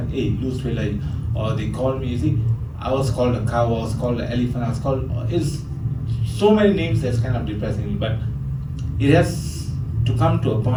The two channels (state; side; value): identical; both; correlation 1.00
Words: Hey, lose weight, like, or they call me. You see, I was called a cow. I was called an elephant. I was called. It's so many names that's kind of depressing. But it has to come to a